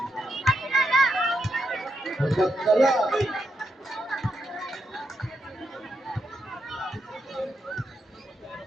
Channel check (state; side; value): normal; both; correlation 0.82